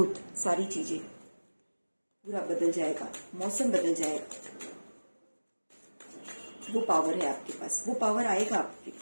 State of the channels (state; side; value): inverted; both; correlation -1.00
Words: सारी चीज़ें, पूरा बदल जाएगा, मौसम बदल जाएगा। वो पावर है आपके पास, वो पावर आएगा आपके